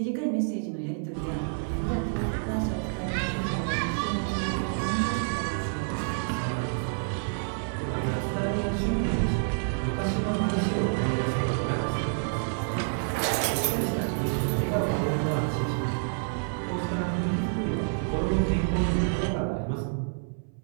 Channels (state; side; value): silent; left; 59 dB below the other